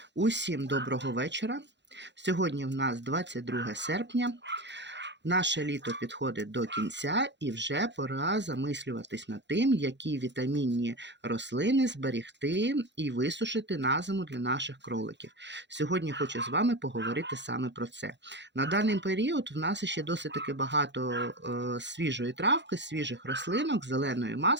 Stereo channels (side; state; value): left; late; 0.52 ms